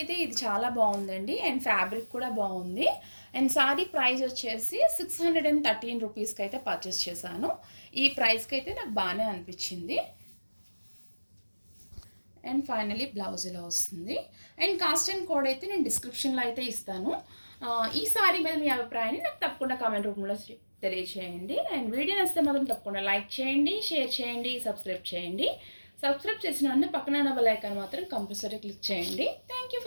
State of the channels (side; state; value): both; inverted; correlation -1.00